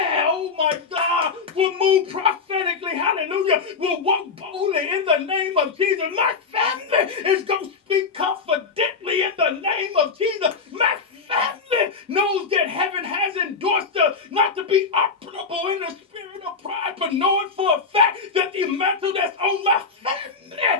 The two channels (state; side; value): quieter; right; 4.9 dB